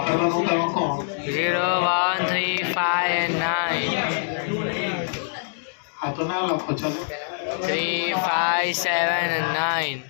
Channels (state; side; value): silent; right; digital silence